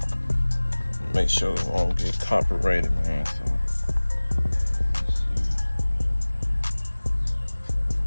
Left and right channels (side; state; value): both; inverted; correlation -1.00